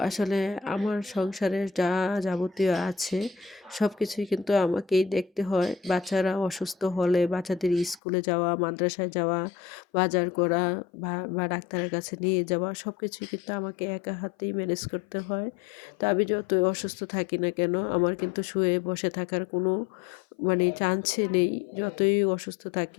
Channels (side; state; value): right; drops out; at 8.0 s